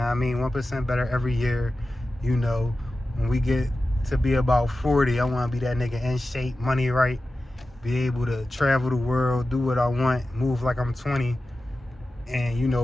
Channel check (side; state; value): both; normal; correlation 0.94